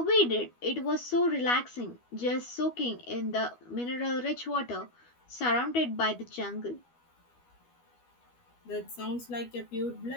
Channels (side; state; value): right; late; 12 ms